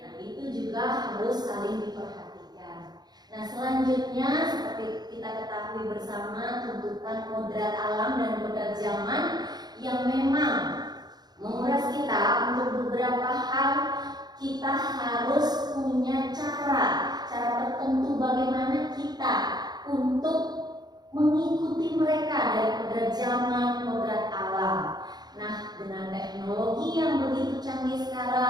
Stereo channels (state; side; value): late; left; 0.20 ms